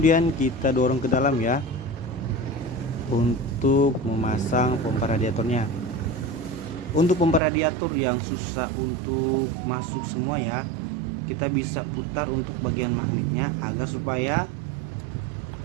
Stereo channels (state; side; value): drops out; left; at 7.4 s